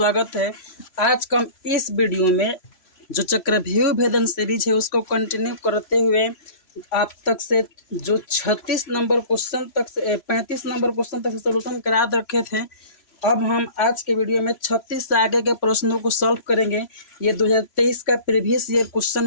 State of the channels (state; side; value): late; right; 3.0 ms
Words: है। आज का हम इस वीडियो में जो चक्रव्यूह भेदन सीरीज है उसको कंटिन्यू करते हुए आप तक से जो 36 नंबर क्वेश्चन तक से 35 नंबर क्वेश्चन तक से सोल्यूशन करा रखे थे, अब हम आज के वीडियो में 36 से आगे के प्रश्नों को सॉल्व करेंगे। ये 2023 का प्रीवियस ईयर क्वेश्चन